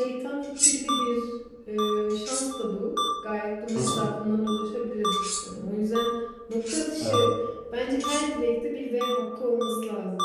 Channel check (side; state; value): both; identical; correlation 1.00